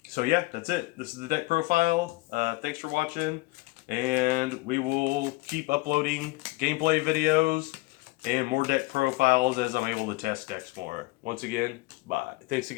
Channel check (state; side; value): quieter; right; 22.7 dB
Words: So yeah, that's it. This is the deck profile. Thanks for watching. And we will keep uploading gameplay videos and more deck profiles as I'm able to test decks more. Once again, bye. Thanks